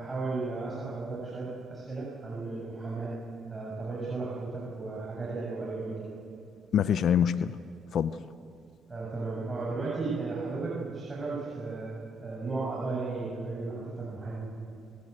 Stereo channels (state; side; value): normal; both; correlation 0.70